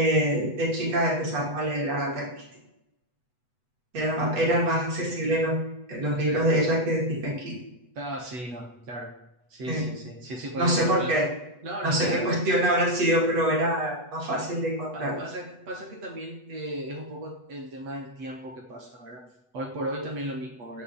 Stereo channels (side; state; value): left; late; 8.0 ms